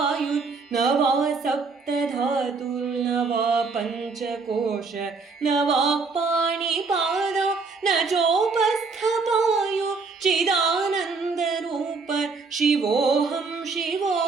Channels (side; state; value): left; quieter; 4.4 dB